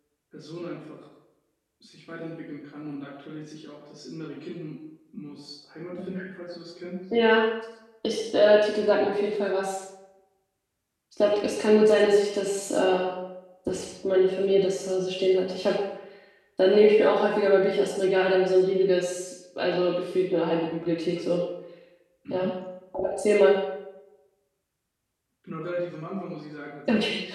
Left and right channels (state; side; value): identical; both; correlation 1.00